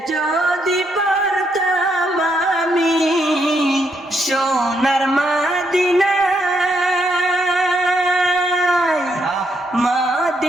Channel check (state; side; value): normal; both; correlation 0.76